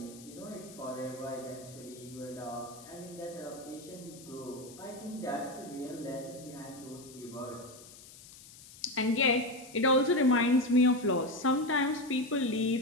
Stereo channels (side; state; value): left; noise; hiss, 19 dB below the sound